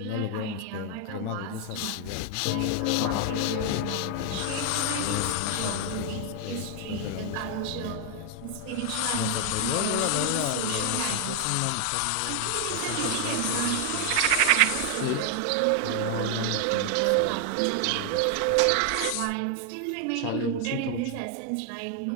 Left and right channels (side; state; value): both; different; correlation 0.00